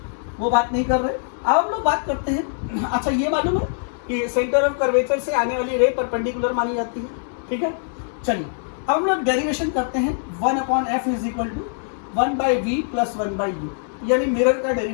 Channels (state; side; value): silent; right; digital silence